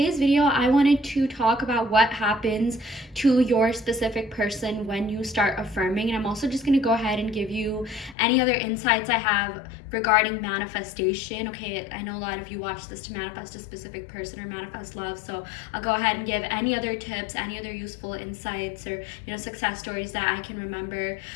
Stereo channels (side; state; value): right; drops out; at 8.2 s